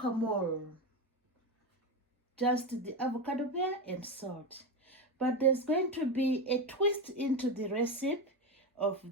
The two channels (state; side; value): normal; both; correlation 0.16